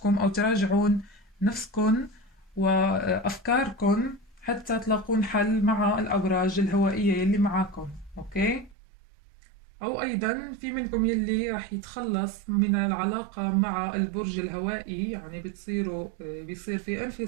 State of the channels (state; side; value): drops out; left; at 8.8 s